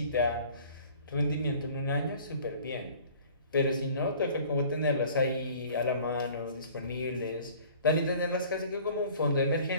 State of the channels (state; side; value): inverted; both; correlation -0.50